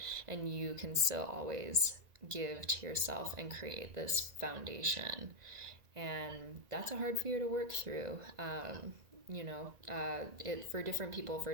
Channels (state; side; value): late; left; 1.9 ms